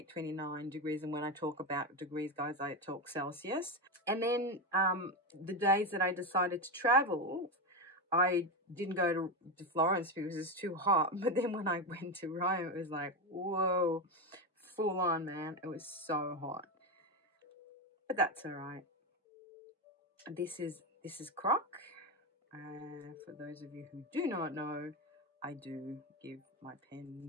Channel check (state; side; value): normal; both; correlation 0.14